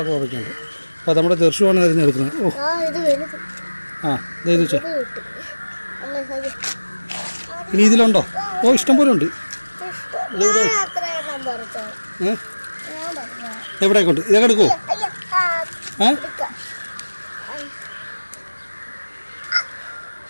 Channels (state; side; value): inverted; both; correlation -1.00